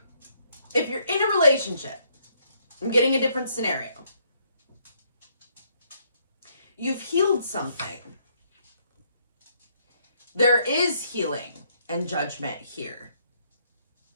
if you're in a relationship, I'm getting a different scenario. You've healed something. There is healing and judgment here.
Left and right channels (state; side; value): inverted; both; correlation -0.70